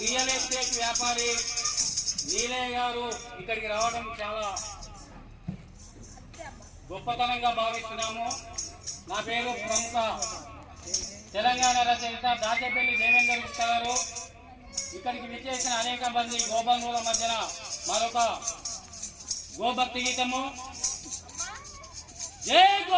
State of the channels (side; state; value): both; identical; correlation 1.00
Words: estate వ్యాపారి నీలయ్య గారు ఇక్కడికి రావడం చాలా గొప్పతనంగా భావిస్తున్నాము. నా పేరు ప్రముఖ తెలంగాణ రచయిత దాచేపల్లి దేవేంద్ర గుప్తా గారు. ఇక్కడికి విచ్చేసిన అనేక మంది గోబంధువుల మధ్యన మరొక గోభక్తి గీతము. జై